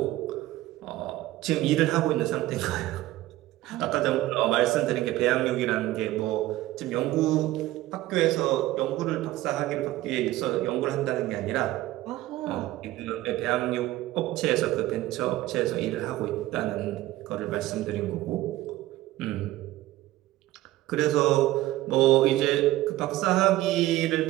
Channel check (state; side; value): quieter; left; 16.3 dB